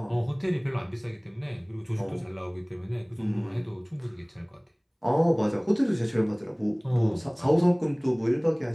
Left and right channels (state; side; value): identical; both; correlation 1.00